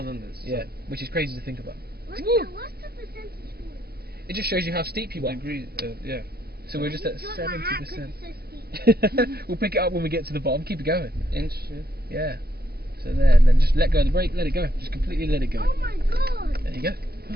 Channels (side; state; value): left; late; 0.46 ms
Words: than this. Yeah, which is crazy to think about. What's the percentage for? It just shows you how steep you are. Yeah. So we're just at 70%. It's so steep. We'll pick it up when we get to the bottom. Keep it going. Inch. Yeah. So there, and then just let go of the brake. Let it go. Just completely let it go. Oh my God. There you go.